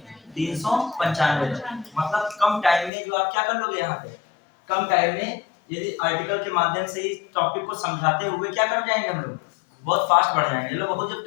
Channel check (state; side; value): drops out; right; at 2.9 s